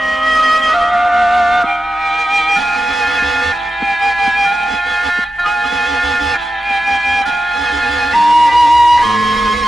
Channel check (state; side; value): normal; both; correlation 0.91